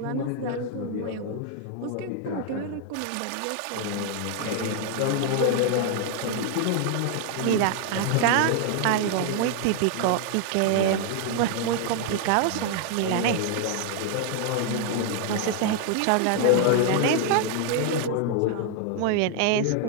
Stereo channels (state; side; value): different; both; correlation 0.00